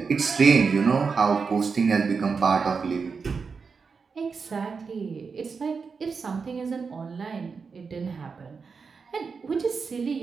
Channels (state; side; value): quieter; left; 5.2 dB